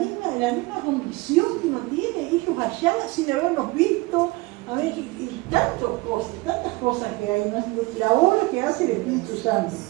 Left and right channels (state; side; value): quieter; left; 22.9 dB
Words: condición que uno tiene, ellos allá sin habernos visto, a ver, y tantas cosas que hay, ¿no? La obra que hace el Espíritu Santo,